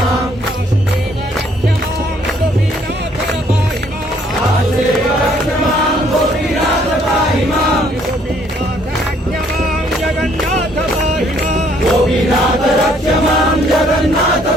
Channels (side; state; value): both; normal; correlation 0.64